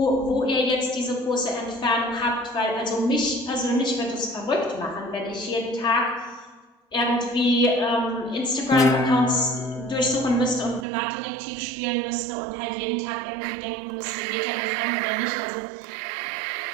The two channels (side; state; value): left; drops out; at 10.9 s